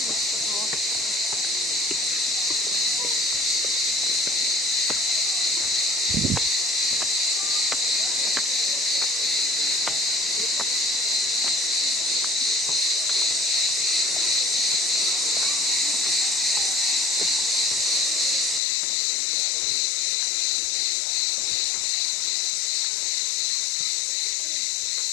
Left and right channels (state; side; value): drops out; right; at 18.6 s